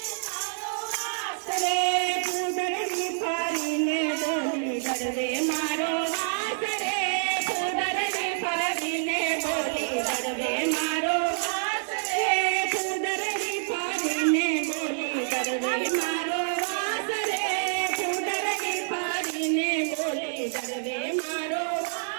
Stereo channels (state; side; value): silent; left; 59 dB below the other